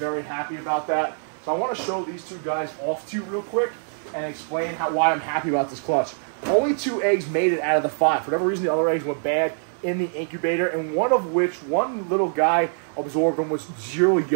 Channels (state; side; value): silent; left; digital silence